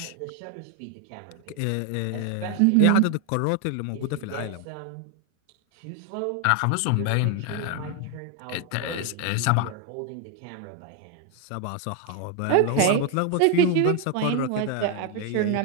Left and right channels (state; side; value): different; both; correlation 0.01